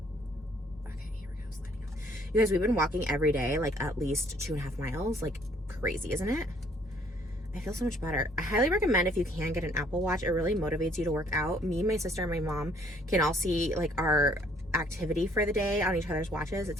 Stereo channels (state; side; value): normal; both; correlation 0.62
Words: Okay, here we go, sliding off. You guys, we've been walking every day, like at least 2.5 miles. Like crazy, isn't it? I feel so much better. I highly recommend if you can get an Apple Watch. It really motivates you to work out. Me, my sister, and my mom can all see like our activity for the day on each other's watches.